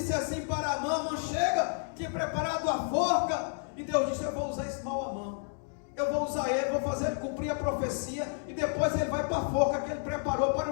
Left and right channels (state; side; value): silent; right; 57 dB below the other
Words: assim para Amã: chega, tinha preparado a forca. E Deus disse: eu vou usar esse mau Amã, eu vou usar ele, vou fazer ele cumprir a profecia, e depois ele vai para a forca que ele preparou para